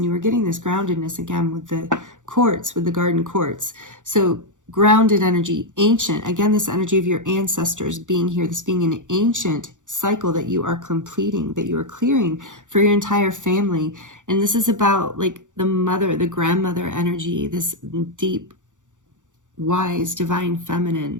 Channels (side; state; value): left; late; 0.86 ms